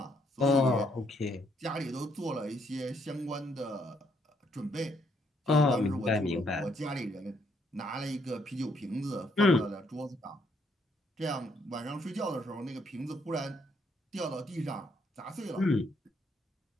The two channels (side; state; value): both; normal; correlation 0.71